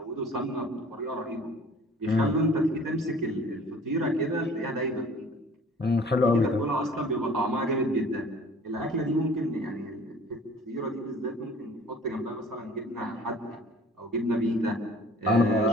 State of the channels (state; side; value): normal; both; correlation 0.49